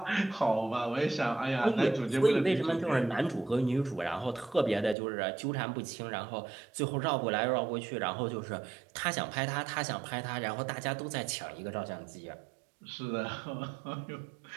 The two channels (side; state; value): left; drops out; at 5.0 s